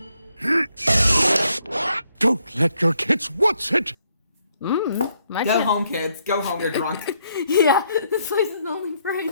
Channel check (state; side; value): inverted; both; correlation -0.74